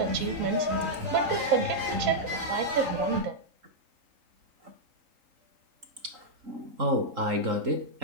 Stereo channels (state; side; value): late; left; 3.8 ms